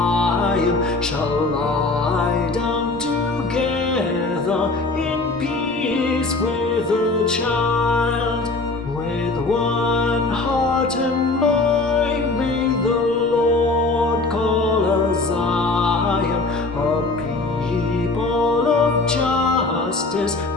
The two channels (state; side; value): quieter; right; 3.4 dB